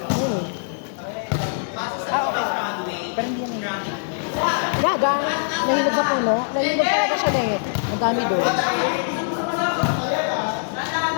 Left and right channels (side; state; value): right; silent; digital silence